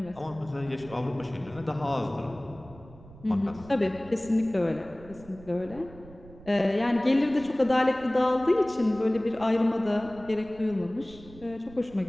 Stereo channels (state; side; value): noise; right; rumble, 20 dB below the sound